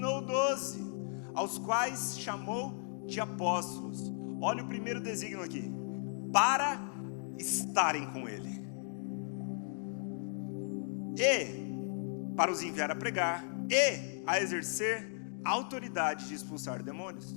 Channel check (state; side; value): silent; right; 54 dB below the other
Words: 12, aos quais chamou de apóstolos. Olha o primeiro designo aqui: para estarem com ele, e para os enviar a pregar, e a exercer a autoridade de expulsar